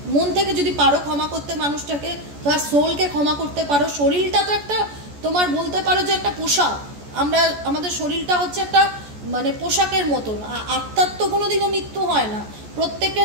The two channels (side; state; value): left; late; 14 ms